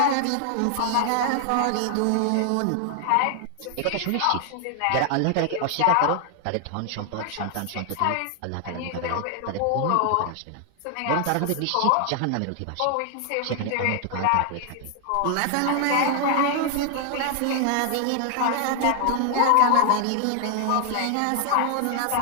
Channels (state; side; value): different; both; correlation 0.00